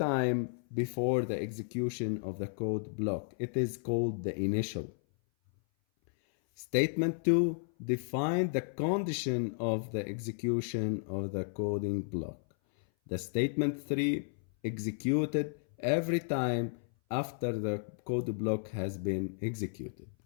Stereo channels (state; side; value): silent; right; 56 dB below the other